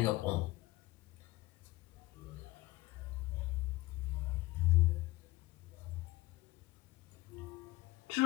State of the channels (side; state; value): right; quieter; 19.2 dB